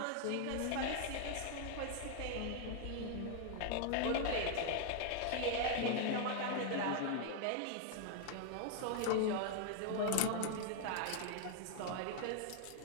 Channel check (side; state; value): both; different; correlation 0.00